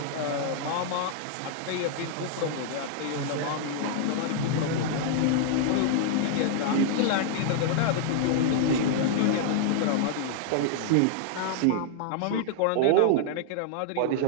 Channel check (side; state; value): both; different; correlation -0.01